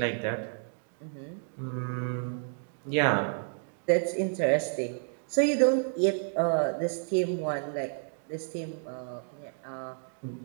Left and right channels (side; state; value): left; silent; digital silence